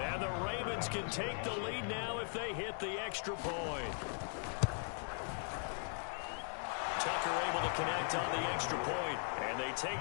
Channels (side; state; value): right; silent; 52 dB below the other